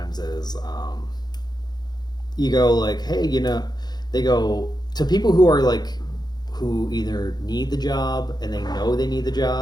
is, you go like, hey, they go to people who are like, who either need the job and they know they need the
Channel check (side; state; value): right; late; 0.20 ms